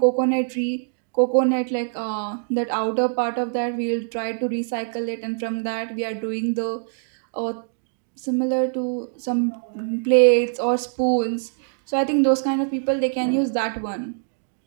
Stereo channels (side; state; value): left; silent; digital silence